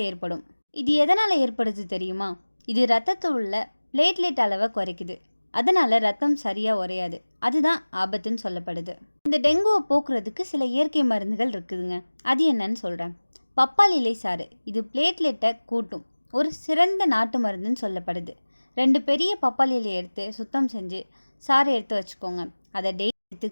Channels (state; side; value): inverted; both; correlation -1.00